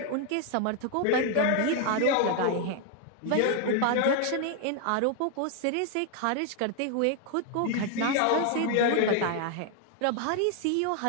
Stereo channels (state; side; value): different; both; correlation 0.00